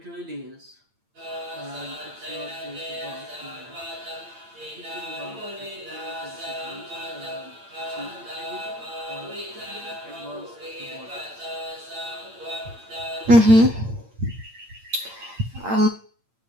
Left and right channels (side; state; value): left; late; 8.8 ms